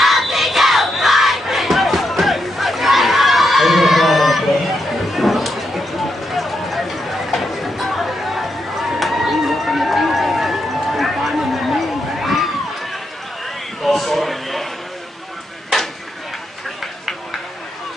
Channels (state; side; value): normal; both; correlation 0.82